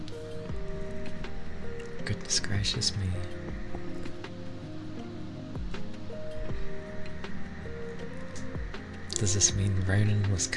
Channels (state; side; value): identical; both; correlation 1.00